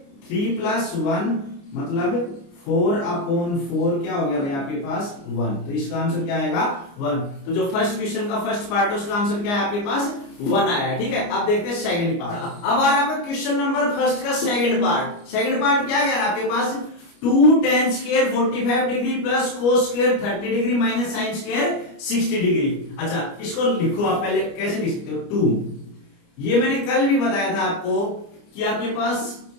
3 + 1 मतलब 4/4 क्या हो गया भाई आपके पास 1। तो इसका आंसर क्या आएगा 1। तो जो फर्स्ट क्वेश्चन का फर्स्ट पार्ट है उसका आंसर क्या है आपके पास 1 आया है, ठीक है। अब देखते हैं सेकंड पार्ट। अब आ रहा है क्वेश्चन नंबर फर्स्ट का सेकंड पार्ट। सेकंड पार्ट क्या कह रहा है आपके पास 2 tan square 45 degree plus cos square 30 degree minus sin square 60 degree. अच्छा इसको लिखो आप, पहले कैसे लिख सकते हो 2। ये मैंने कल भी बताया था आपको कि आपके पास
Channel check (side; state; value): right; late; 29 ms